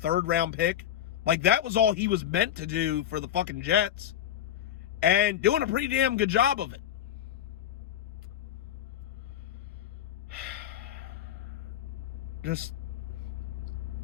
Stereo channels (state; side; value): quieter; right; 10.8 dB